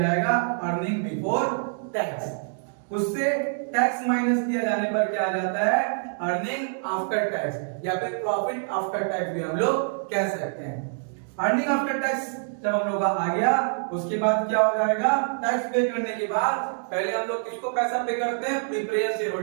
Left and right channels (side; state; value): left; silent; digital silence